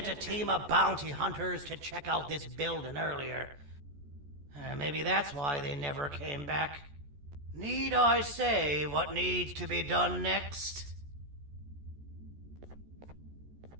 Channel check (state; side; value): late; left; 14 ms